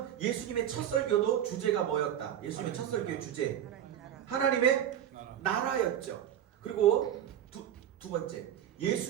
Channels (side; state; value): left; quieter; 10.4 dB